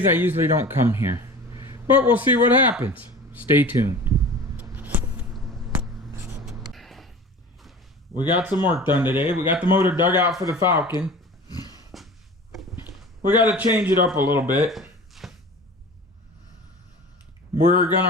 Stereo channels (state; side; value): normal; both; correlation 0.38